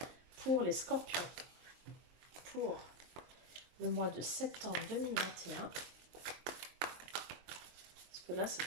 pour les scorpions, pour le mois de septembre 2021. Parce que là, c'est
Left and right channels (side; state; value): left; late; 23 ms